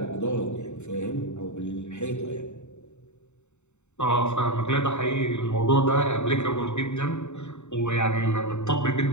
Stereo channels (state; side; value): late; right; 0.83 ms